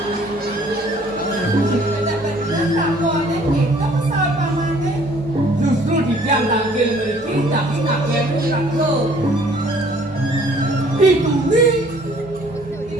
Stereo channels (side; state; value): both; normal; correlation 0.57